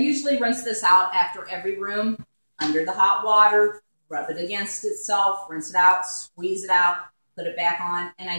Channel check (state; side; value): inverted; both; correlation -1.00